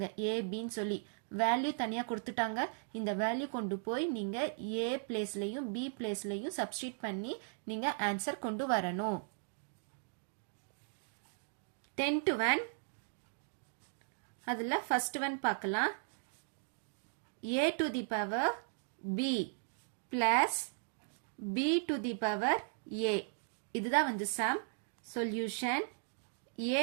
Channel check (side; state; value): left; silent; digital silence